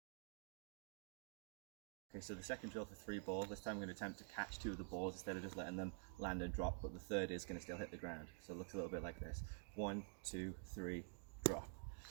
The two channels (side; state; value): left; quieter; 39.2 dB